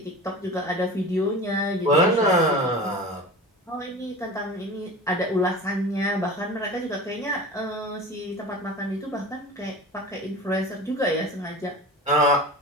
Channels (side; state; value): both; normal; correlation 0.34